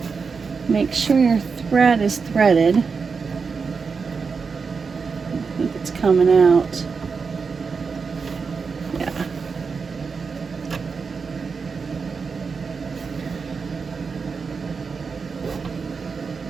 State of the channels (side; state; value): left; quieter; 5.2 dB